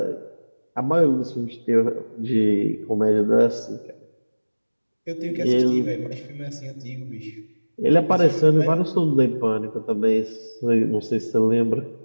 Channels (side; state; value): both; inverted; correlation -1.00